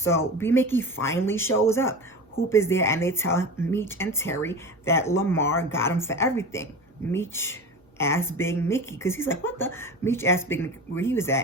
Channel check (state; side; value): normal; both; correlation 0.30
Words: B-Mickie finally shows up. Hoop is there, and they tell Meech and Terry that Lamar got him for everything. Meech asks Big Mickey, because he's like, what the? Meech asked Big Mickey where he was at,